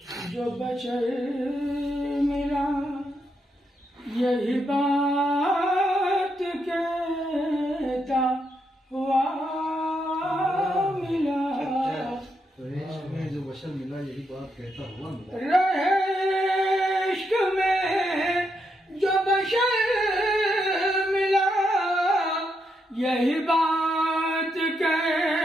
जो बशर मिला यही बात कहता हुआ मिला। में जो बशर मिला यही बात कहता हुआ मिला। रहे इश्क में जो बशर मिला यही बात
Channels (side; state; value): both; normal; correlation 0.80